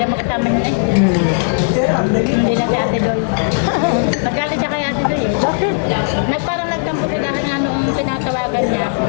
magkasama niya eh. Hindi na si Ate Doy. Nagalit siya kay Ate Doy eh. Bakit? Parang nagtampo siya dahil nga nung tinatawagan niya,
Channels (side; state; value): right; silent; 69 dB below the other